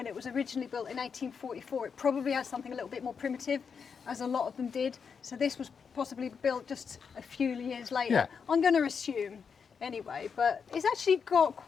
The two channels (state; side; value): quieter; right; 6.2 dB